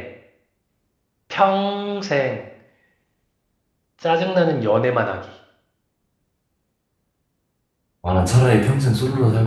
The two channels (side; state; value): both; identical; correlation 1.00